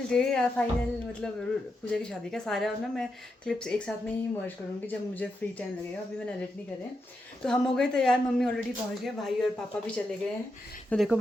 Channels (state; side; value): normal; both; correlation 0.85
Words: डे या फाइनल मतलब पूजा की शादी का सारा ना मैं क्लिप्स एक साथ में ही मर्ज करूँगी जब मुझे फ्री टाइम लगेगा। अभी मैंने एडिट नहीं करे। तो हम हो गए तैयार, मम्मी ऑलरेडी पहुँच गए, भाई और पापा भी चले गए हैं। तो देखो